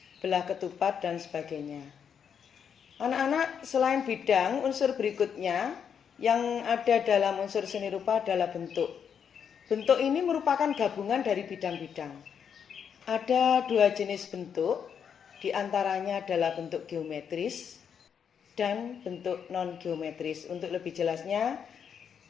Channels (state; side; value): quieter; right; 7.5 dB